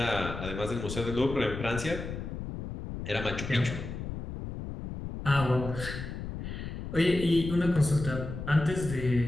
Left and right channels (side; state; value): left; noise; rumble, 7 dB below the sound